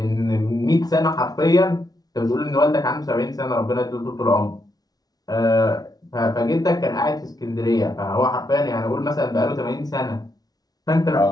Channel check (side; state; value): right; late; 0.19 ms